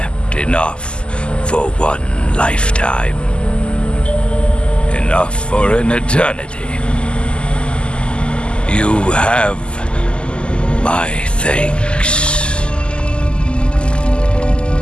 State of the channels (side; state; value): right; late; 0.050 ms